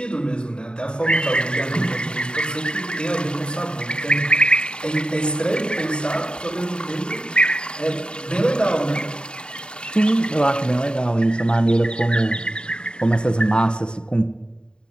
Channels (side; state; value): right; late; 0.050 ms